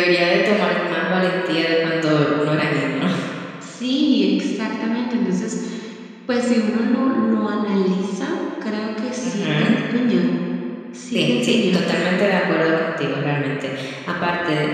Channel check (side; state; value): both; identical; correlation 1.00